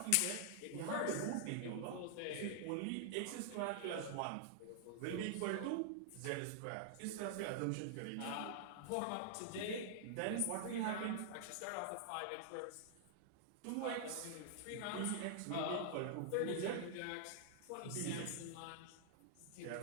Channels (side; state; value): both; different; correlation -0.01